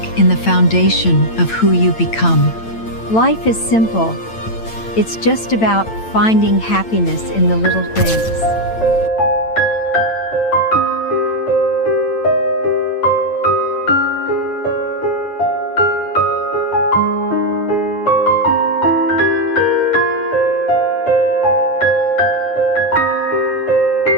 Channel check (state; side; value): late; right; 8.9 ms